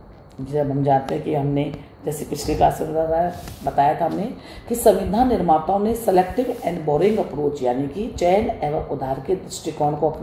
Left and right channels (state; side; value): identical; both; correlation 1.00